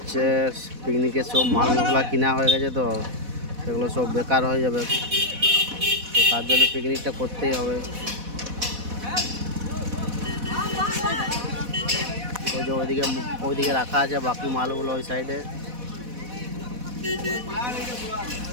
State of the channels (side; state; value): left; late; 4.1 ms